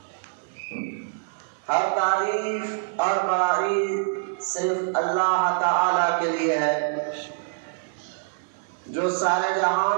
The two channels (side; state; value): left; silent; 57 dB below the other